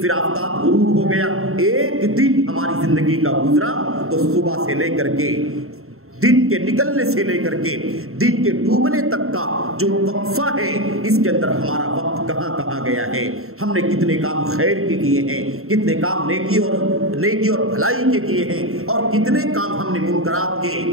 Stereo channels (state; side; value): late; left; 0.62 ms